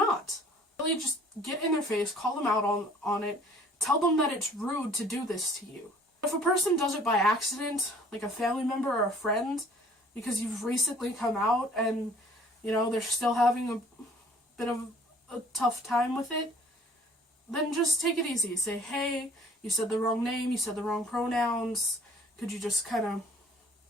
Really just get in their face, call them out on it, tell them that it's rude to do this to you. If a person does it by accident, like a family member or a friend, because you've recently come out and, they're still having a bit of a tough time with it, then just take it easy. Say, hey, you said the wrong name, you said the wrong pronouns, could you just kind of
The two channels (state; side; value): normal; both; correlation 0.54